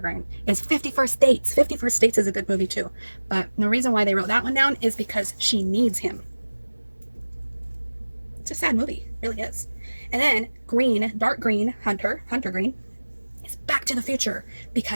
is 50 First Dates. 50 First Dates is a good movie too, but the reason why they wrote that one down is because she needs him. It's a sad movie, it really is. And then green, dark green, Hunter green, is Back to the Future,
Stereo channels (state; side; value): inverted; both; correlation -1.00